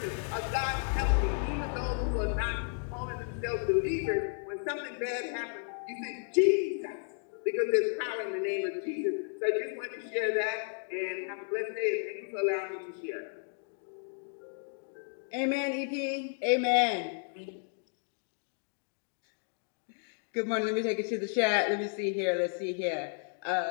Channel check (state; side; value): silent; right; 56 dB below the other